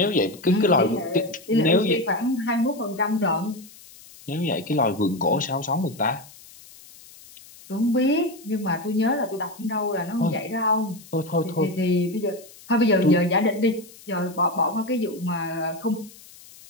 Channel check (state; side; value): noise; left; hiss, 21 dB below the sound